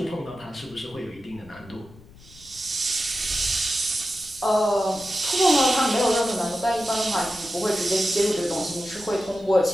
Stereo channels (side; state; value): left; noise; rumble, 22 dB below the sound